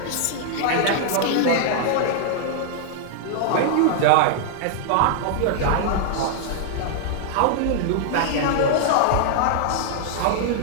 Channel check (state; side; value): different; both; correlation -0.01